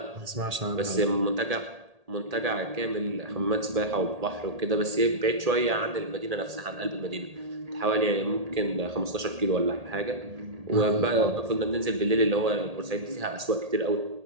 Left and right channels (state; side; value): late; left; 1.8 ms